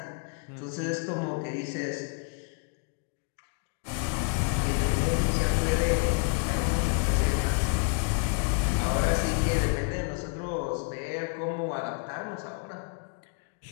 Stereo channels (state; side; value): quieter; right; 38.1 dB